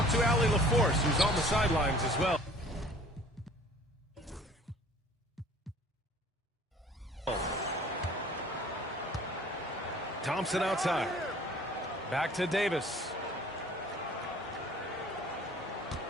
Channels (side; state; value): both; normal; correlation 0.50